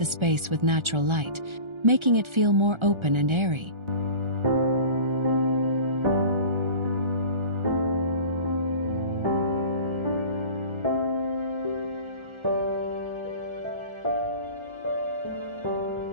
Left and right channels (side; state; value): left; late; 1.3 ms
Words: space with natural light, making it feel more open and airy.